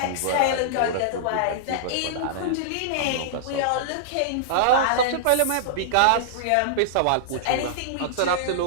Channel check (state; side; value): different; both; correlation -0.02